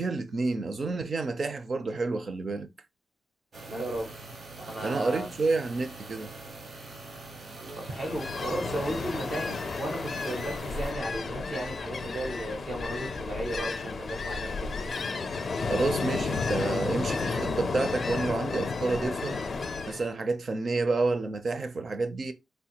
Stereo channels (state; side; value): normal; both; correlation 0.87